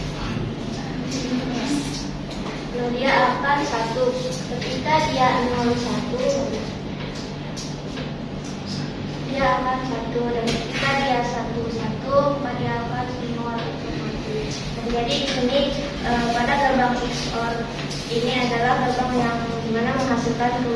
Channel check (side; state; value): both; identical; correlation 1.00